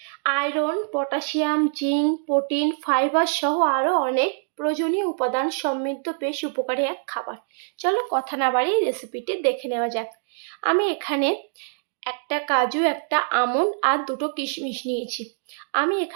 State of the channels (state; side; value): silent; left; digital silence